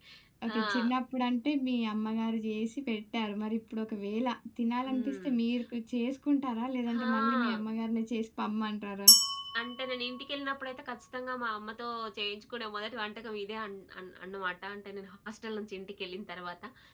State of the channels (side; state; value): both; identical; correlation 1.00